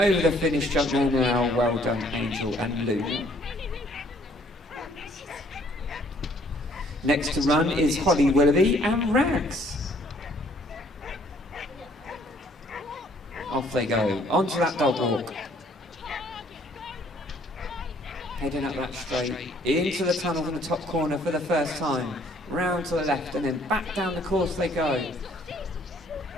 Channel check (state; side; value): normal; both; correlation 0.61